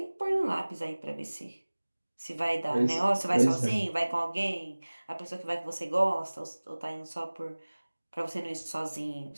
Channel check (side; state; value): both; inverted; correlation -1.00